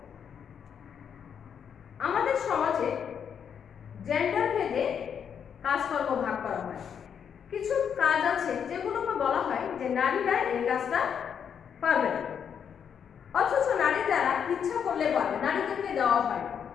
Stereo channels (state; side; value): quieter; right; 7.8 dB